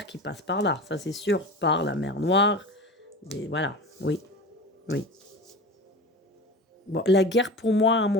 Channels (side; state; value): both; normal; correlation 0.32